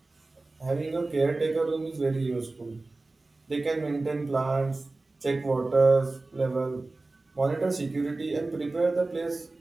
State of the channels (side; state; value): left; quieter; 3.2 dB